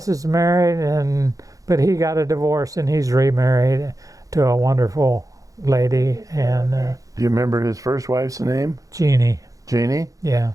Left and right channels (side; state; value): left; late; 0.17 ms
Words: is married, but he got a divorce and he's remarried to a wonderful lady, and Do you remember his first wife's name? Jeannie. Jeannie? Yeah,